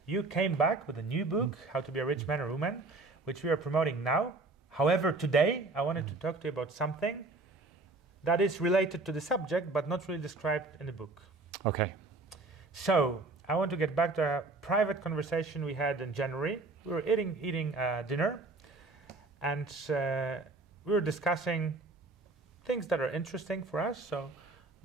you came back with a new book, How to be a Rich Man or Woman, which we are promoting now. However, today I wanted to talk to you about something that is related to the subject, but not really described in the book. Okay. So I want to get back to a private conversation we had in January. We were eating dinner, and we were discussing things that are interesting for us. So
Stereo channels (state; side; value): quieter; left; 3.4 dB